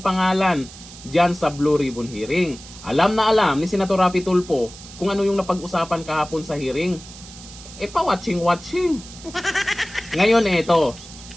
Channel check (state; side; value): noise; right; hiss, 17 dB below the sound